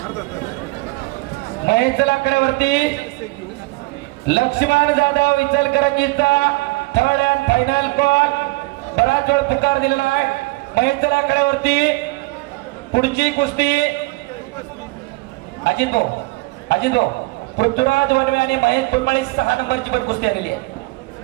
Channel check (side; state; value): left; quieter; 23.3 dB